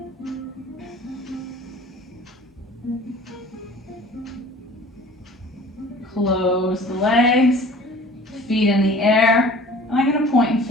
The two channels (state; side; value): normal; both; correlation 0.46